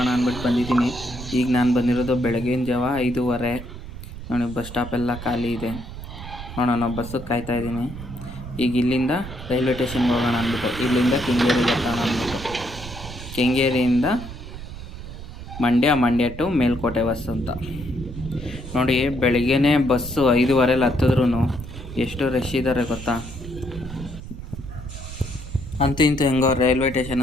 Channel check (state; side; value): noise; right; rumble, 11 dB below the sound